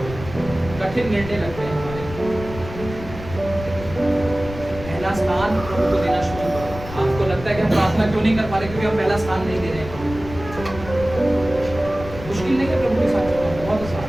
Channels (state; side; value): noise; left; rumble, 12 dB below the sound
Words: कठिन निर्णय लगते हैं हमारे। पहला स्थान प्रभु को देना शुरू करो। आपको लगता है कि हम प्रार्थना क्यों नहीं कर पा रहे? क्योंकि हम पहला स्थान नहीं दे रहे हैं। मुश्किल नहीं है प्रभु के साथ चलना, बहुत आसान